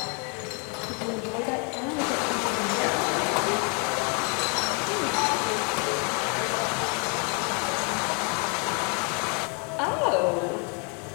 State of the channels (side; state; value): right; quieter; 36.5 dB